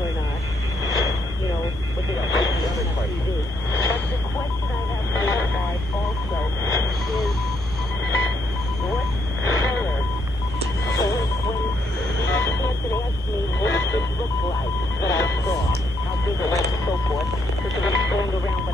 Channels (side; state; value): both; normal; correlation 0.74